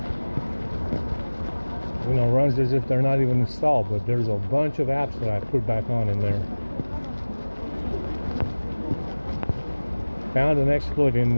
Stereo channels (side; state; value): both; inverted; correlation -1.00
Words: You know, runs as if they're not even installed, but there's a bunch of apps that I put back on in there. Found an exploit in